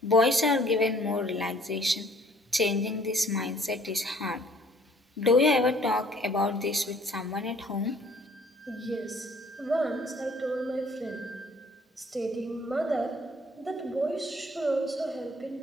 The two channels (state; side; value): normal; both; correlation 0.58